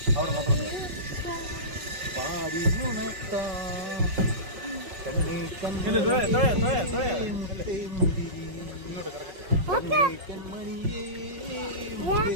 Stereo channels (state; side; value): late; left; 5.4 ms